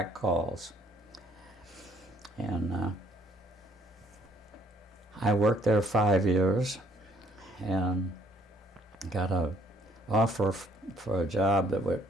calls. And I worked there 5 years and got an offer for a job that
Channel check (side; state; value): both; normal; correlation 0.64